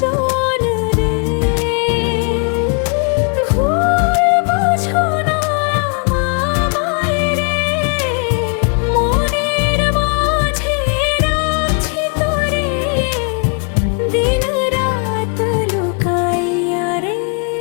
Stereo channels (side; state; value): right; quieter; 37.7 dB